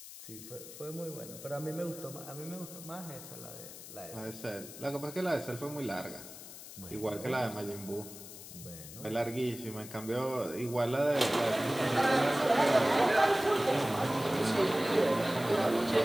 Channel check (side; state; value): left; noise; hiss, 14 dB below the sound